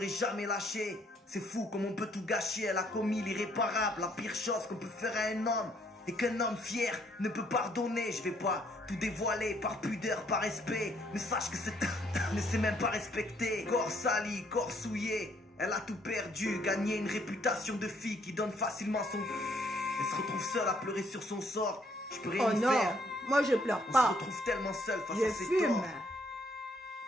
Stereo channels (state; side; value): normal; both; correlation 0.68